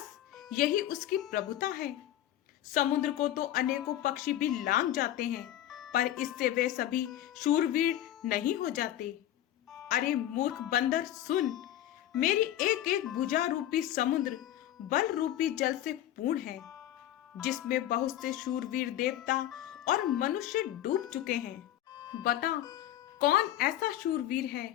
यही उसकी प्रभुता है। समुद्र को तो अनेकों पक्षी भी लांघ जाते हैं, पर इससे वे सभी शूरवीर नहीं हो जाते। अरे मूर्ख बंदर सुन, मेरी एक एक भुजा रूपी समुद्र बल रूपी जल से पूर्ण है, जिसमें बहुत से शूरवीर देवता और मनुष्य डूब चुके हैं। बता, कौन ऐसा शूरवीर है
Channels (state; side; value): quieter; right; 12.7 dB